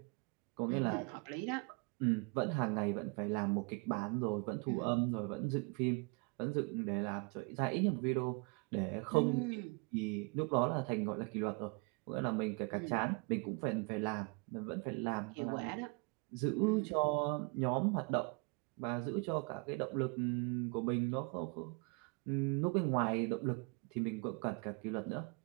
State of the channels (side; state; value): left; quieter; 32.5 dB